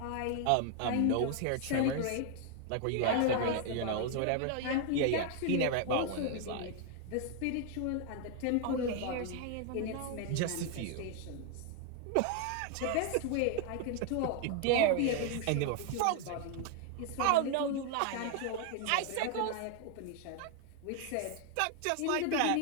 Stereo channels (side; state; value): both; different; correlation 0.00